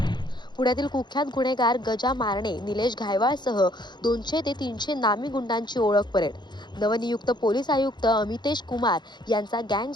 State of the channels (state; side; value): late; right; 0.21 ms